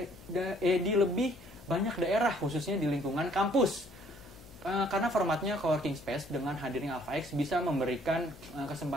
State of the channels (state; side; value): noise; left; hum, 21 dB below the sound